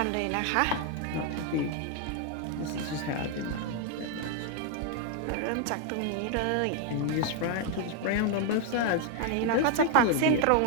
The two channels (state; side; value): different; both; correlation 0.00